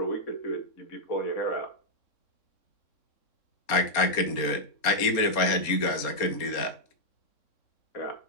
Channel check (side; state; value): right; late; 4.2 ms